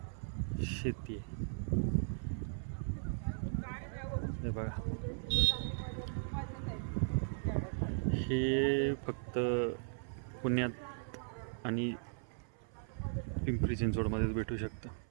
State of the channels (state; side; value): silent; left; 53 dB below the other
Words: शेती आहे. हे बघा, हे फक्त पुण्यात आणि पिंपरी चिंचवडमध्येच भेटू शकतं.